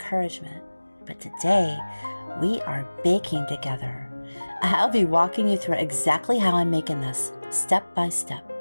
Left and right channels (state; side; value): inverted; both; correlation -1.00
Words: but today we are baking together. I'll be walking you through exactly how I'm making this, step by step.